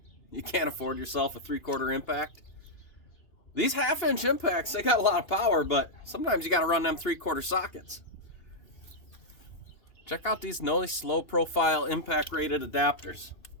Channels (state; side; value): late; right; 2.8 ms